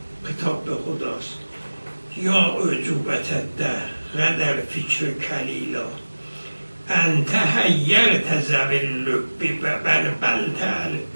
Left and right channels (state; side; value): inverted; both; correlation -1.00